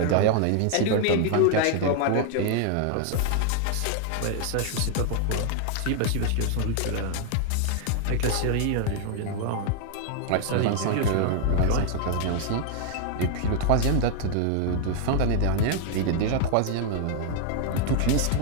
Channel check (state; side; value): different; both; correlation 0.00